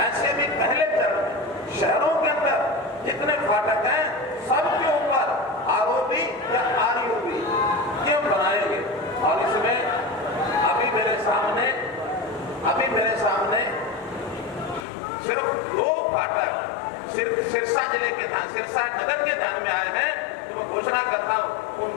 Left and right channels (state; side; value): drops out; right; at 14.9 s